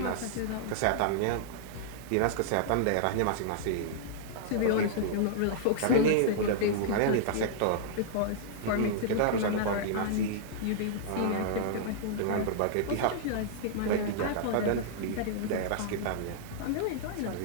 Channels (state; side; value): different; both; correlation -0.02